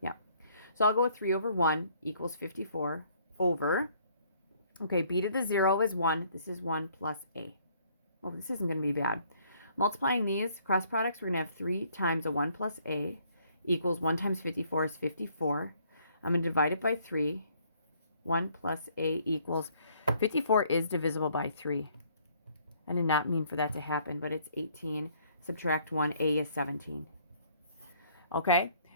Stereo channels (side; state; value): both; inverted; correlation -0.63